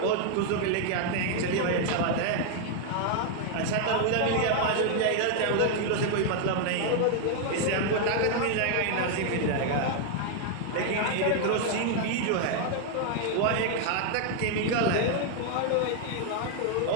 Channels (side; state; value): both; different; correlation 0.00